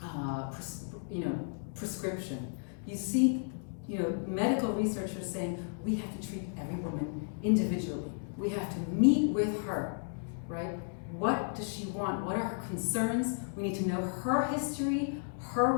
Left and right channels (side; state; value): right; silent; digital silence